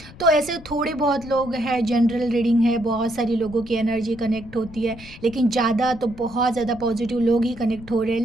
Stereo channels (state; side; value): noise; left; rumble, 18 dB below the sound